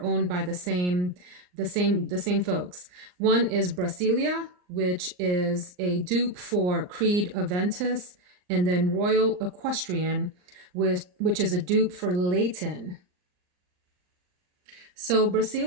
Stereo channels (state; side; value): late; left; 39 ms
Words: owned by the same folks. One is Brasilia, which is a dupe for Creed Aventus, and then Royal Equestrian, which is a dupe for Leighton. So